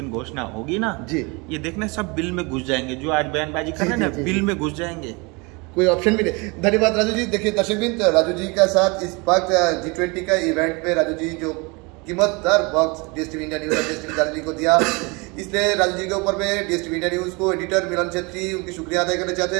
घोषणा होगी ना जी, ये देखना सब बिल में घुस जाएंगे, जो आज बयानबाजी कर रहे हैं ना बिल में घुस जाएंगे, कोई ऑप्शन भी नहीं। धन्यवाद राजू जी। देखिए दर्शकबिंद, राजू जी का साथ इस वक्त G20 का इवेंट में राजू जी जो कीमतदार वक्त DSTV इंडिया न्यूज और DSTV दार्जिलिंग को दिया, इसलिए राजू जी के ऊपर में DSTV इंडिया न्यूज को एडिटर मिलन छेत्री उनकी शुक्रिया अदा करना चाहते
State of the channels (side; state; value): left; quieter; 28.0 dB